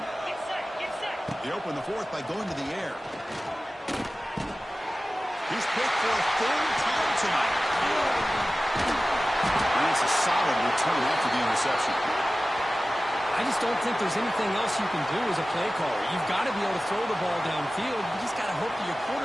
They open the fourth by going to the air. He's picked for a third time tonight. And it's a solid return after the interception. I just don't think there's anything else you can do as a play caller. You've got to be able to throw the ball downfield. You just got to hope that your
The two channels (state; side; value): normal; both; correlation 0.96